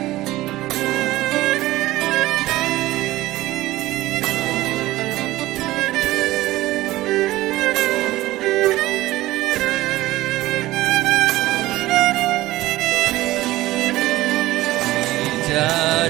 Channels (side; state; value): left; quieter; 17.1 dB